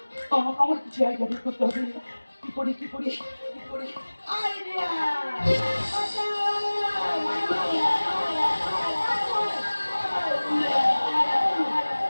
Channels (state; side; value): inverted; both; correlation -1.00